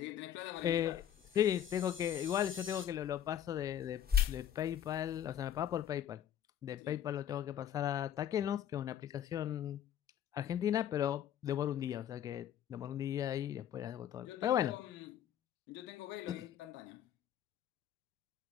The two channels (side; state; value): right; quieter; 10.1 dB